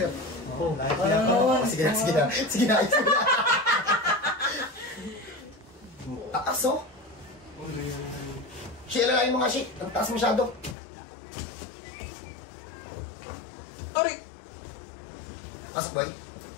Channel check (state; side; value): drops out; right; at 10.8 s